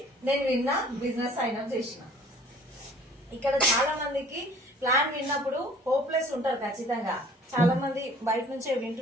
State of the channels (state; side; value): normal; both; correlation 0.52